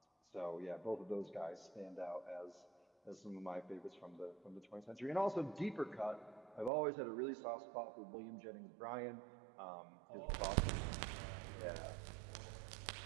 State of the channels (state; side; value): drops out; left; at 6.7 s